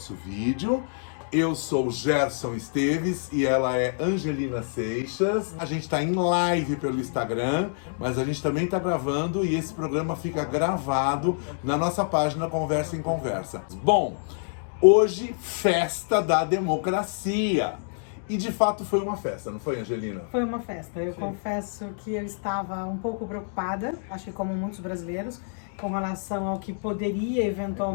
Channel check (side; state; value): right; silent; digital silence